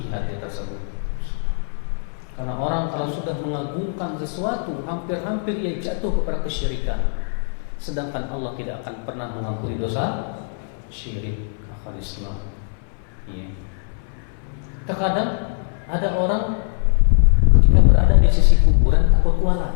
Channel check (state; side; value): silent; right; 62 dB below the other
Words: hati tersebut. Karena orang kalau sudah mengagungkan sesuatu, hampir-hampir ia jatuh kepada kesyirikan. Sedangkan Allah tidak akan pernah mengampuni dosa syirik, akal Islam. Ya. Terkadang ada orang ketika berada di sisi kuburan takut